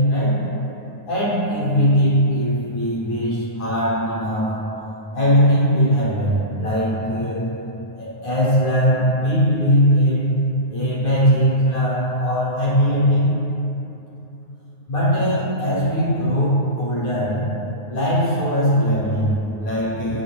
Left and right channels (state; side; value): late; right; 9.6 ms